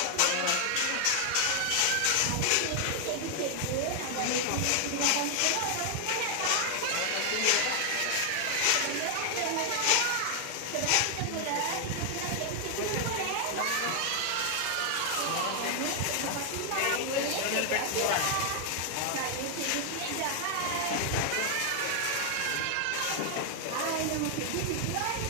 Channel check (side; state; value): both; different; correlation 0.00